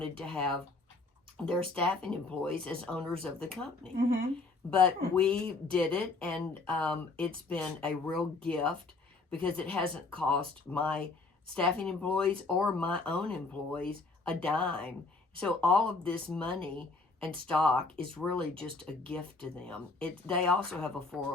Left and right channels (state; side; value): quieter; right; 3.7 dB